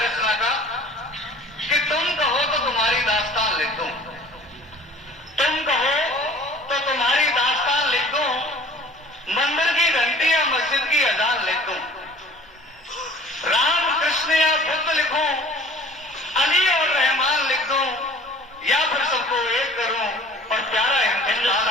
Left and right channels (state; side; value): normal; both; correlation 0.48